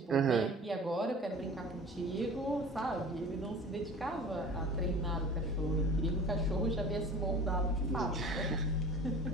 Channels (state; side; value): normal; both; correlation 0.41